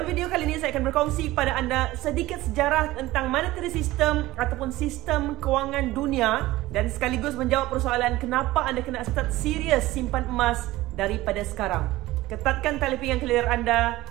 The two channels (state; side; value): quieter; left; 17.8 dB